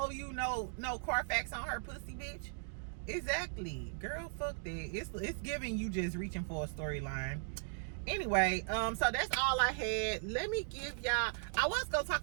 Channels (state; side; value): silent; left; digital silence